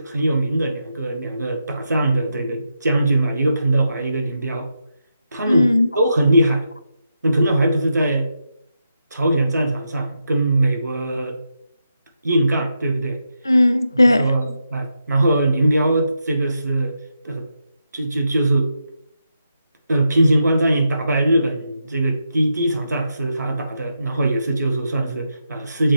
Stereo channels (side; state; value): both; inverted; correlation -0.85